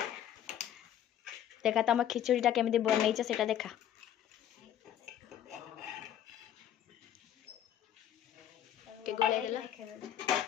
देखा तुम खिचड़ीटा केमिति बनैछ सेटा देखा के गोले देला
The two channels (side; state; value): right; quieter; 10.7 dB